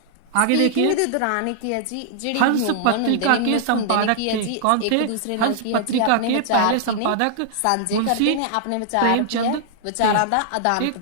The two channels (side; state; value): both; different; correlation -0.01